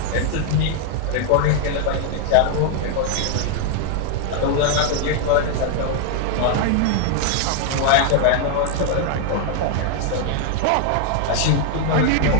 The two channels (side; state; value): both; different; correlation 0.00